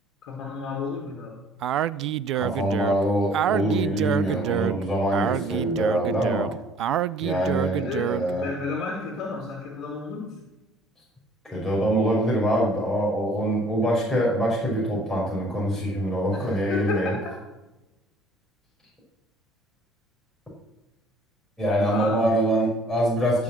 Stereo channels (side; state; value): both; normal; correlation 0.56